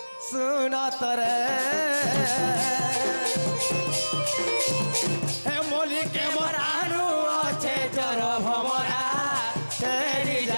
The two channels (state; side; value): inverted; both; correlation -1.00